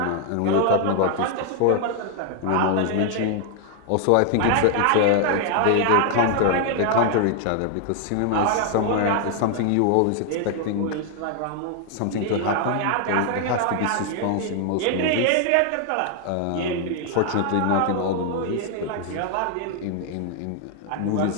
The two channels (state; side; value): different; both; correlation 0.00